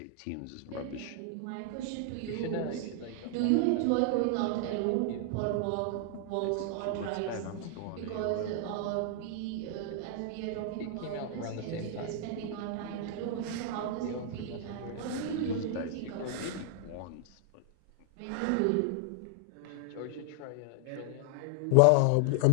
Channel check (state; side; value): different; both; correlation 0.00